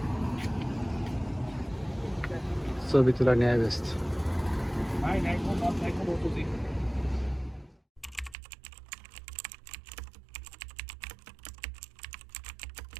ছবি তোলা নিয়ে ব্যস্ত।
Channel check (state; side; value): drops out; left; at 8.3 s